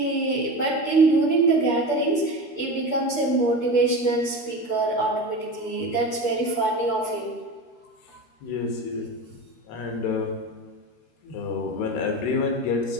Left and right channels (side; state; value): right; late; 13 ms